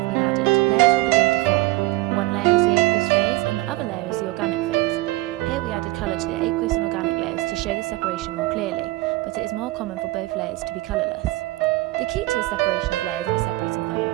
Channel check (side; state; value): left; quieter; 19.8 dB